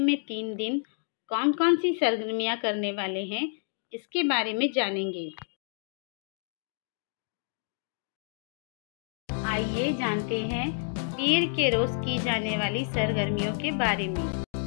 3 दिन कौन कौन सी सरगर्मियाँ करने वाले हैं, इसके बारे में जानेंगे। आइए जानते हैं पीर के रोज की जाने वाली सरगर्मियों के बारे में।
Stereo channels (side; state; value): right; silent; 57 dB below the other